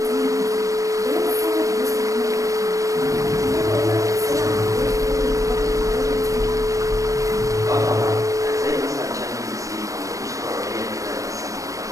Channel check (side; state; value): left; late; 0.16 ms